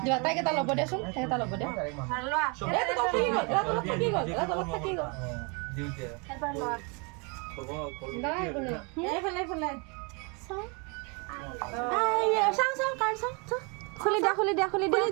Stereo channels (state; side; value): quieter; left; 32.5 dB